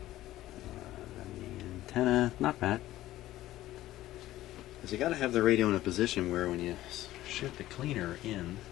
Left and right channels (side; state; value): right; quieter; 15.1 dB